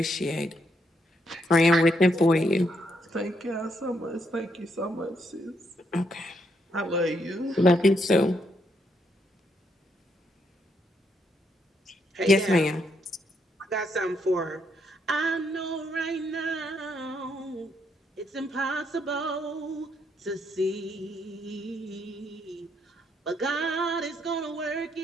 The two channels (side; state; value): both; normal; correlation 0.76